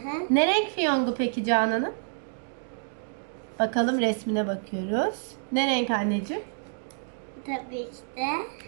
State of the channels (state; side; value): silent; left; digital silence